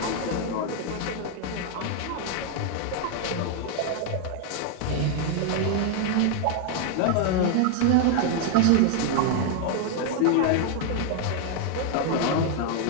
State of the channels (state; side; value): different; both; correlation 0.00